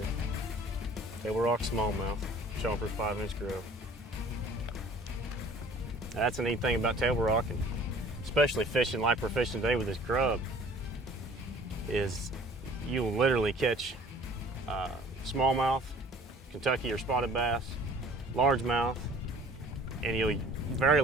Table Rock smallmouth, chomper's 5-inch grub. That's a neat thing about Table Rock, and especially fishing like we're fishing today with this grub. is you'll literally catch smallmouth, Kentucky or spotted bass, largemouth, and you'll very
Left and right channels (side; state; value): both; normal; correlation 0.50